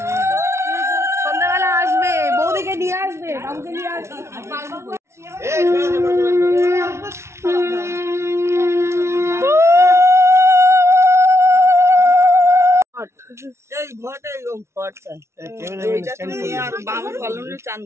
সন্ধ্যাবেলা আসবে, বৌদিকে নিয়ে আসবে, বাবুকে নিয়ে আসবে। এই ঘরটা এরকম ঘরটা চান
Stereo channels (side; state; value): left; late; 0.13 ms